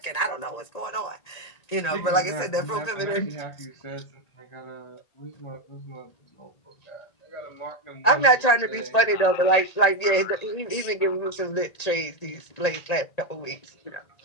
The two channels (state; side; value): late; right; 1.9 ms